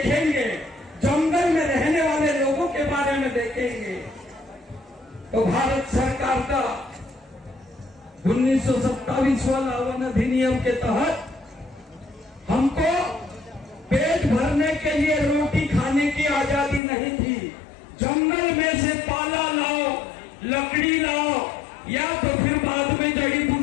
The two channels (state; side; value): drops out; right; at 16.8 s